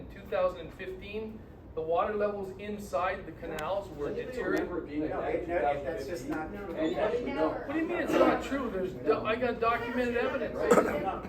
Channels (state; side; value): identical; both; correlation 1.00